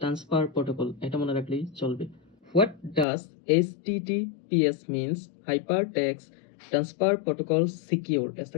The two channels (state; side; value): drops out; right; at 3.1 s